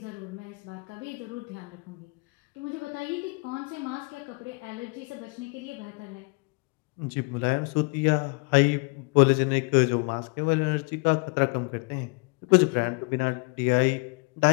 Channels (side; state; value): right; quieter; 31.7 dB